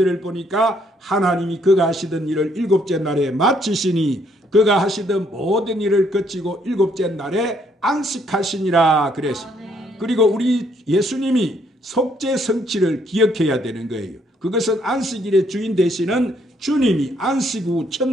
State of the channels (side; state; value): both; normal; correlation 0.69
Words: 보니까 하나님이 그가 하시던 일을 일곱째 날에 마치시니 그가 하시던 모든 일을 거치고 일곱째 날에 안식하시니라 그랬어요. 그리고 우리 예수님이 속죄 성취를 기억해야 되는 거예요. 그것은 안식일의 주인 되시는 주님이 안식 후